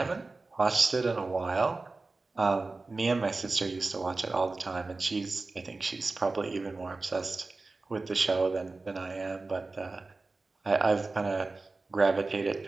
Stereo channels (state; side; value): quieter; left; 3.5 dB